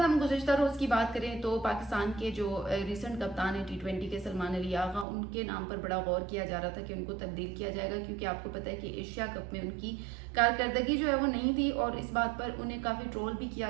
गुज़िश्ता रोज़ की बात करें तो पाकिस्तान के जो रिसेंट कप्तान है T20 के, सलमान अली आगा, उनके नाम पर बड़ा गौर किया जा रहा था कि उनको तब्दील किया जाएगा, क्योंकि आपको पता है कि एशिया कप में उनकी कारकर्दगी जो है वो नहीं थी और इस बात पर उन्हें काफ़ी ट्रोल भी किया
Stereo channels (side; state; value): left; drops out; at 5.1 s